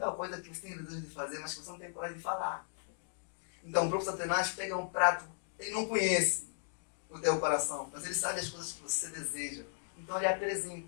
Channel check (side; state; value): right; silent; digital silence